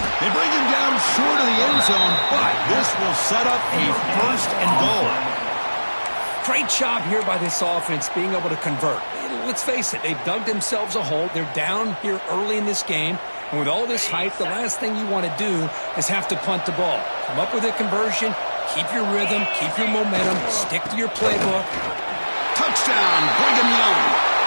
bring him down short of the end zone, but this will set up a first and goal. Great job here by this offense being able to convert. Let's face it, they've dug themselves a hole. They're down here early in this game. And with all this hype, the last thing you want to do is have to punt the ball. Come up with a conversion, keep your rhythm, keep your momentum, stick to your playbook. Touchdown, Brigham Young,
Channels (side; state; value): both; inverted; correlation -1.00